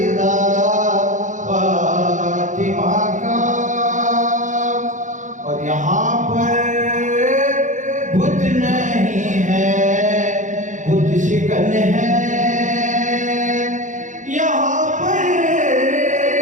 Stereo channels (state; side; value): late; left; 0.36 ms